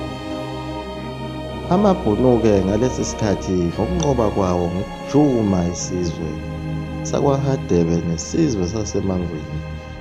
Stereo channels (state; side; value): identical; both; correlation 1.00